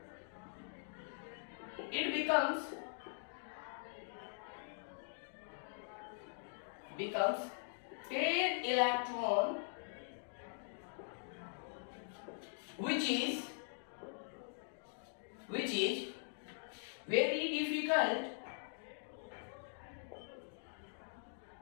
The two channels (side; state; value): right; silent; digital silence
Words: it becomes 10 electron, which is very difficult